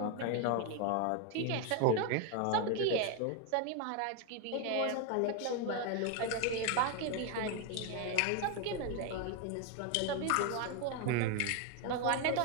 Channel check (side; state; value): both; different; correlation 0.01